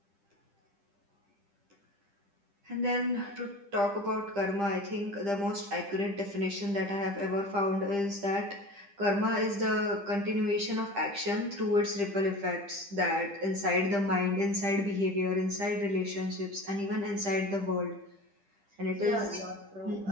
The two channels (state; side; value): late; left; 10 ms